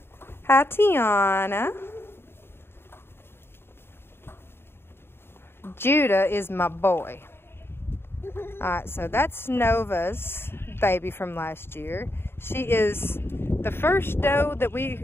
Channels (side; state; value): right; late; 0.11 ms